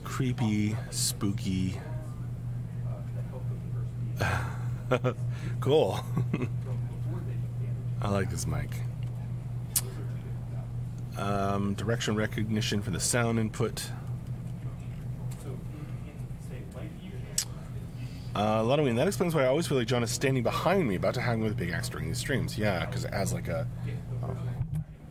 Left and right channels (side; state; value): both; identical; correlation 1.00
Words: spooky. Cool. I like this mic. Direction recognition for the sound input. Lotoween, that explains why I always feel like John is standing behind me, about to hang with a big axe during these streams. Yeah, because it has like a